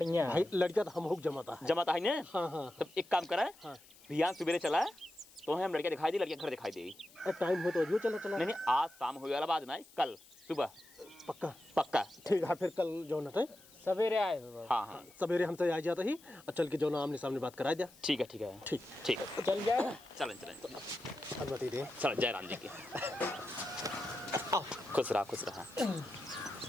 भाई लड़का तो हम हुक जमाता है। जमाता है ना। हाँ हाँ तब एक काम करा हाँ। भैया सवेरे चला तो हम लड़कियाँ दिखाई दी लड़कियाँ घर दिखाई देगी। टाइम हो तो अजू चला चला। नहीं आज शाम हो वाला बात ना कल सुबह पक्का पक्का। ठीक है फिर कल जो नटे सवेरे आए हो बाबू। हाँ हाँ सवेरे हमसे आ जाता ही और चल के जो ना आमने सामने बात करा दिया। ठीक है ठीक है ठीक ठीक है चल जाए। चलें अनुमति दे। चल जय राम जी की। खुश रहा।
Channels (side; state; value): left; noise; hiss, 24 dB below the sound